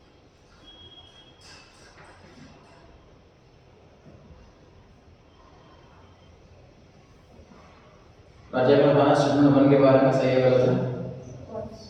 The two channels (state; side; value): identical; both; correlation 1.00